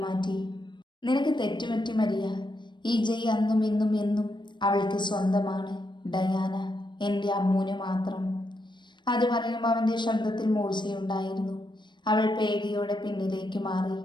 മാറ്റി. നിനക്ക് തെറ്റുപറ്റി മരിയ. ഈ ജയ് അന്നും ഇന്നും എന്നും അവൾക്ക് സ്വന്തമാണ്. ഡയാന എൻ്റെ അമ്മൂന് മാത്രം. അത് പറയുമ്പോൾ അവൻ്റെ ശബ്ദത്തിൽ മൂർച്ചയുണ്ടായിരുന്നു. അവൾ പേടിയോടെ പിന്നിലേക്ക് മാറി.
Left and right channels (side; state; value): right; late; 0.22 ms